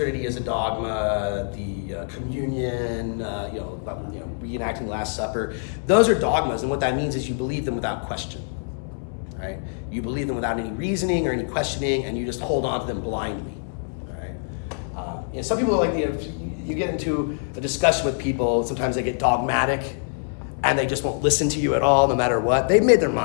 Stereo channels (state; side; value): silent; right; 62 dB below the other